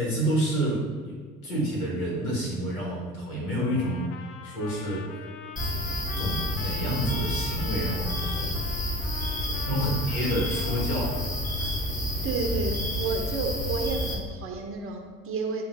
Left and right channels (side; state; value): both; normal; correlation 0.37